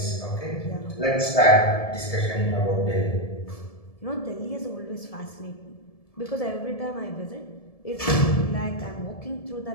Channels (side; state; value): right; late; 1.7 ms